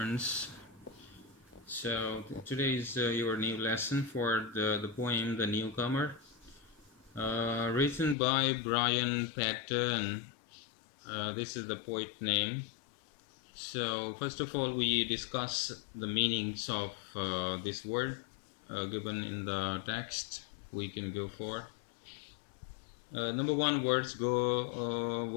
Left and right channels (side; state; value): right; drops out; at 8.2 s